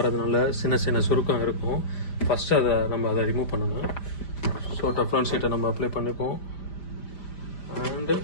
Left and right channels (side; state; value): right; late; 5.1 ms